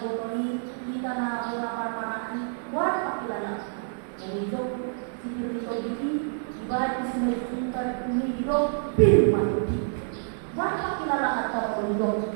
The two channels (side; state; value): left; silent; digital silence